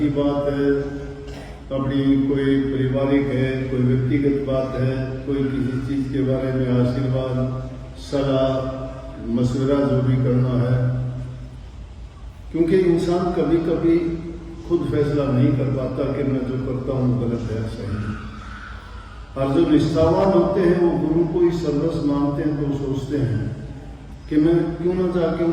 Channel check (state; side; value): identical; both; correlation 1.00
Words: बात है, अपनी कोई पारिवारिक है, कोई व्यक्तिगत बात है, कोई किसी चीज के बारे में आशीर्वाद, सलाह, मशवरा जो भी करना है, क्योंकि इंसान कभी कभी खुद फैसला नहीं कर पाता कि मैं जो करता हूँ गलत है सही है। और जो निष्ठावान होते हैं वो गुरु को ही सर्वस्व मानते हैं, तो सोचते हैं कि मैं क्यों ना जाके